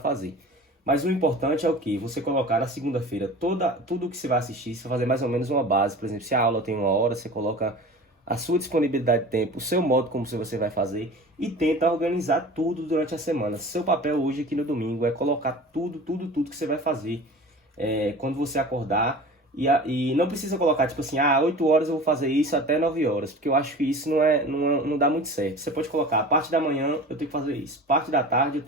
Mas o importante é o que? Você colocar na segunda-feira tudo que você vai assistir, você fazer mais ou menos uma base. Por exemplo, se a aula tem 1 hora, você coloca a sua disponibilidade de tempo, o seu modo como você vai fazer e tenta organizar tudo durante a semana. Seu papel hoje aqui no domingo é colocar tudo que você vai fazer quando você acordar e não precisa colocar tipo assim, 8 horas eu vou fazer isso até 9 horas, porque eu acho que isso não dá muito certo. Você pode colocar, a parte da manhã eu tenho que fazer isso, parte da tarde eu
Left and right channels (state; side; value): normal; both; correlation 0.38